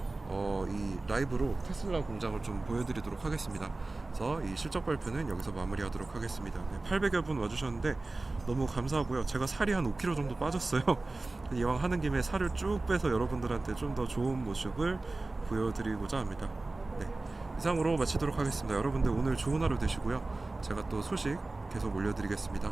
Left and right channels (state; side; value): quieter; left; 3.2 dB